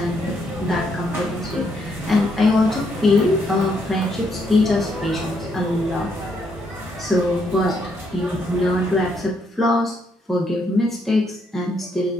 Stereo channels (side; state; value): both; normal; correlation 0.74